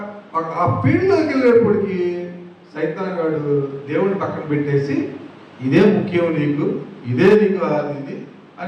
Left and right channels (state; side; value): identical; both; correlation 1.00